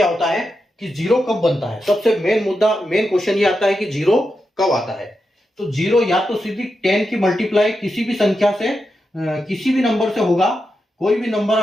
होता है कि जीरो कब बनता है। सबसे मेन मुद्दा, मेन क्वेश्चन ये आता है कि जीरो कब आता है। तो जीरो या तो सीधी 10 की मल्टीप्लाई किसी भी संख्या से, किसी भी नंबर से होगा। कोई भी नंबर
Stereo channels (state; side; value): normal; both; correlation 0.88